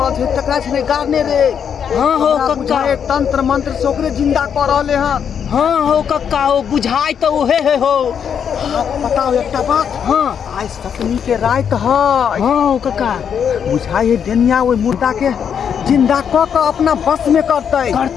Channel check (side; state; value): right; quieter; 7.8 dB